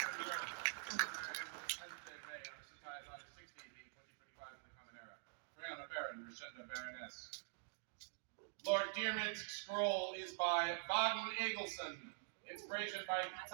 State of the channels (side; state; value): left; silent; digital silence